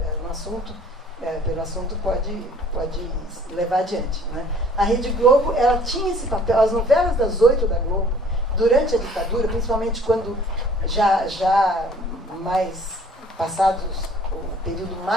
no assunto, pelo assunto, pode levar adiante, né? A Rede Globo, ela tinha esse papel. As novelas das 8 da Globo, durante a ditadura, principalmente quando já mais passados o período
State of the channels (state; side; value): normal; both; correlation 0.54